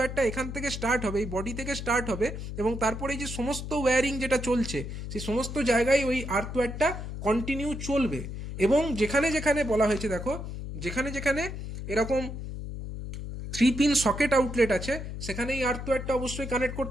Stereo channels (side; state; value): left; noise; hum, 7 dB below the sound